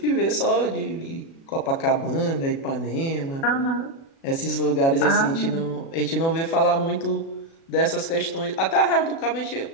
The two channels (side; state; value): right; late; 36 ms